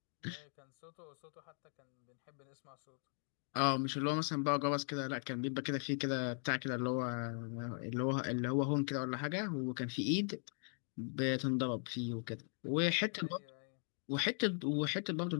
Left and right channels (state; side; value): silent; right; 52 dB below the other